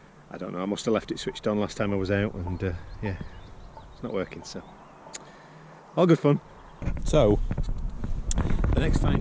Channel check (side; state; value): both; identical; correlation 1.00